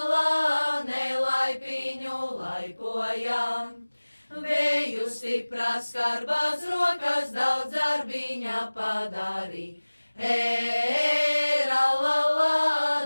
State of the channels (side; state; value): both; inverted; correlation -1.00